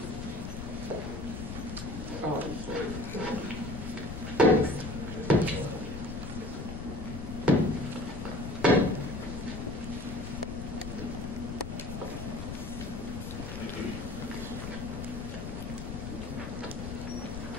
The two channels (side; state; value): left; noise; rumble, 7 dB below the sound